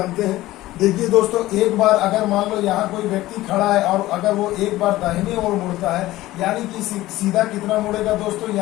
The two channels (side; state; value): right; quieter; 16.7 dB